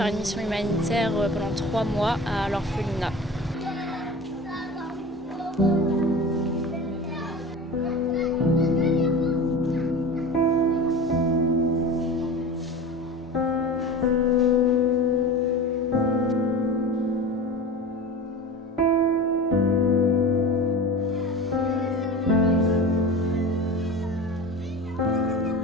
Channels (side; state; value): both; normal; correlation 0.33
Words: une mission humanitaire pendant 3 mois à l'orphelinat.